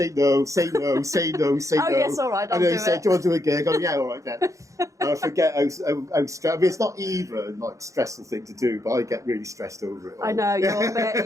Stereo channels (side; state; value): left; late; 0.15 ms